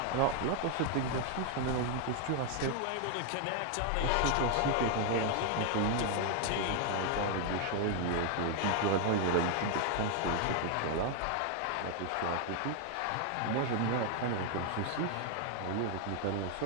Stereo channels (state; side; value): different; both; correlation 0.00